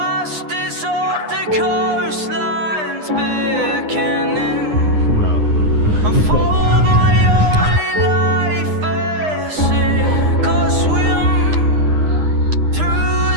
of the coastlines beckoning. Unfold my only life as sink or swim through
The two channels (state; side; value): late; left; 9.7 ms